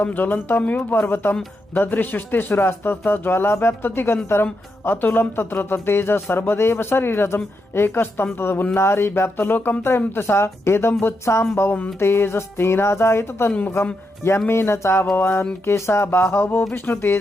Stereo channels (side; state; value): both; normal; correlation 0.83